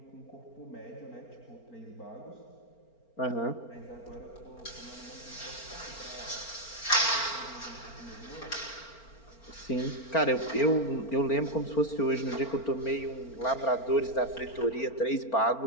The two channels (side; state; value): right; late; 4.4 ms